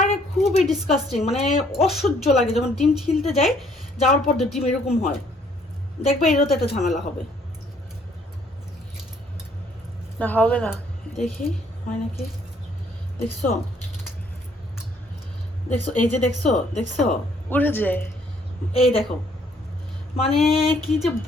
খুবই ডিসকাস্টিং, মানে অসহ্য লাগে যখন ডিম ছিলতে যাই, যাওয়ার পর ডিম এরকম হয়। দেখবে এরও তো একটা ঝামেলা হবে। না হবে না, দেখি হয় নাকি। দেখছো দেখছো, এই যে দেখছো দেখছো উড়ে যায়। এই দেখো, মানে কি যে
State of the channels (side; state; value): both; normal; correlation 0.64